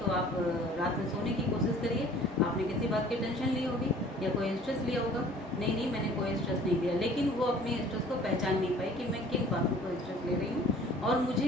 आप रात में सोने की कोशिश करिए, आपने किसी बात की टेंशन ली होगी या कोई स्ट्रेस लिया होगा। नहीं नहीं, मैंने कोई स्ट्रेस नहीं लिया। लेकिन वो अपने स्ट्रेस को पहचान नहीं पाई कि मैं किन बातों को स्ट्रेस ले रही हूँ और मुझे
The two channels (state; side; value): normal; both; correlation 0.51